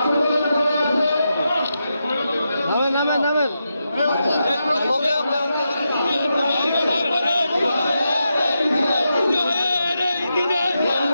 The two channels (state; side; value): inverted; both; correlation -0.87